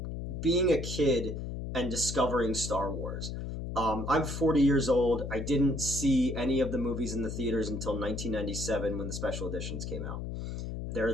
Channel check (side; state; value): left; noise; hum, 5 dB below the sound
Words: being a kid and discovering Star Wars. I'm 40 years old. I didn't see any of the movies in the theaters until 1997 when the special editions came out. They're